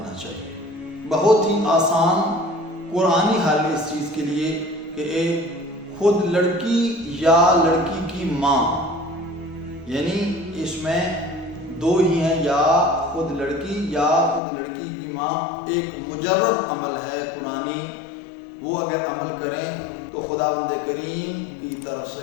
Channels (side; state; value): right; drops out; at 14.4 s